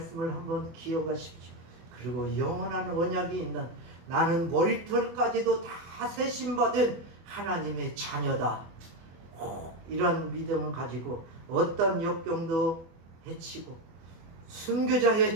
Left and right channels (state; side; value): late; left; 24 ms